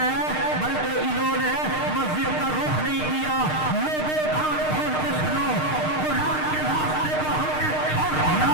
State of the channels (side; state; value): right; late; 6.5 ms